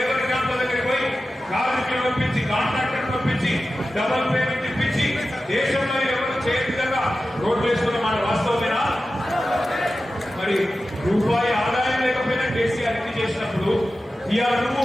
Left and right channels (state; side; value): normal; both; correlation 0.93